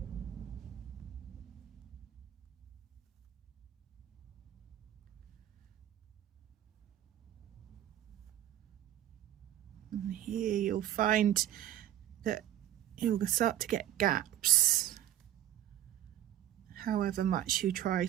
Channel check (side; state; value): left; quieter; 12.3 dB